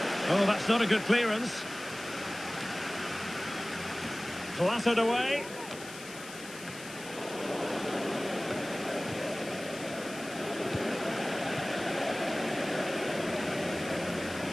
Oh, that's not a good clearance. Clattered away.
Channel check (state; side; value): noise; left; hiss, 15 dB below the sound